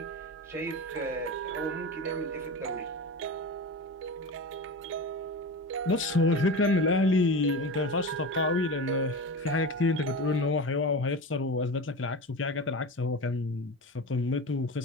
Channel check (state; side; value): normal; both; correlation 0.27